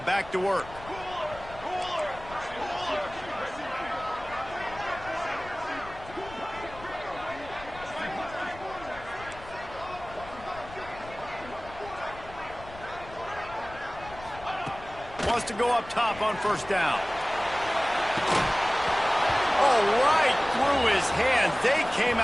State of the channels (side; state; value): left; noise; rumble, 17 dB below the sound